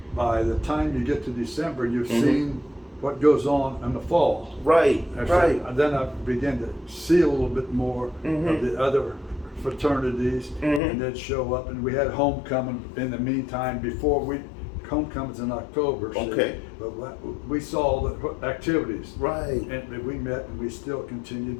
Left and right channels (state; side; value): drops out; right; at 10.8 s